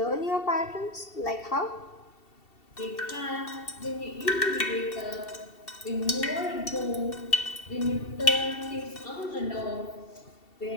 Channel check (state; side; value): late; right; 2.7 ms